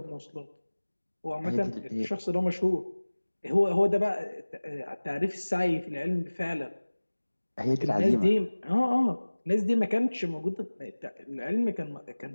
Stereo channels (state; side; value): inverted; both; correlation -1.00